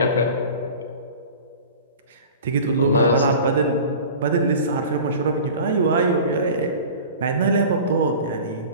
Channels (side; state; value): both; inverted; correlation -0.39